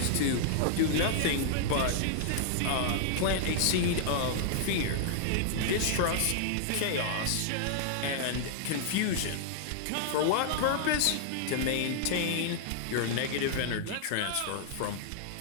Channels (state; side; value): different; both; correlation -0.01